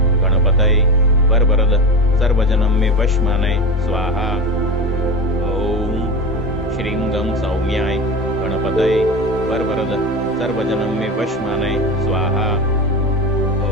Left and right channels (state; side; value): normal; both; correlation 0.25